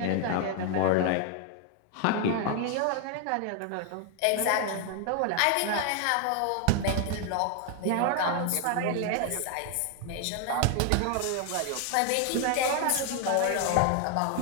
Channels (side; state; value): both; different; correlation 0.00